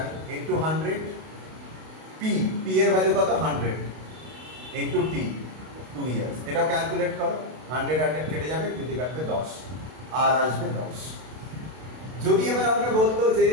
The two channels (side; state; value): left; late; 32 ms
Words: × 100, P এর ভ্যালু কত? 100, × T 2 ইয়ার্স। এটাও ক্যালকুলেট করো, 100 কেটে যাবে, যদি কাটবে 10, আর আসবে 10। যদি এবার আমাকে বলতো যে